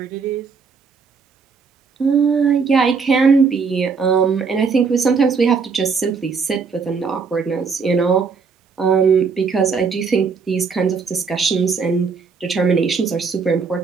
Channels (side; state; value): left; quieter; 5.3 dB